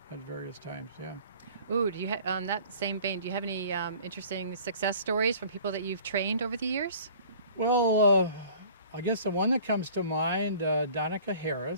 at various times. Yeah. Ooh, do you on that same vein, do you have any interesting success stories from people that you've trained over the years? Well, I guess the one that comes to mind, Danica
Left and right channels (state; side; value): inverted; both; correlation -0.49